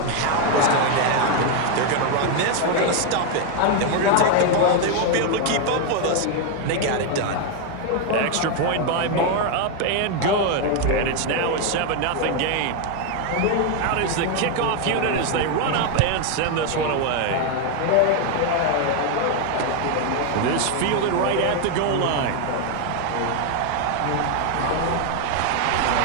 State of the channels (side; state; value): both; different; correlation 0.01